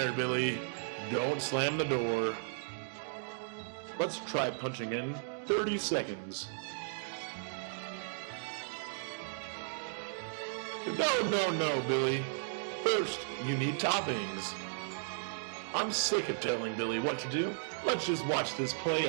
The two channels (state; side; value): silent; left; digital silence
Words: Billy. Don't slam the door. Let's try punching in 30 seconds. Now can I eat it? No, Billy. First, you need toppings. Oh, I'm sick of telling Billy what to do. Let's just watch this play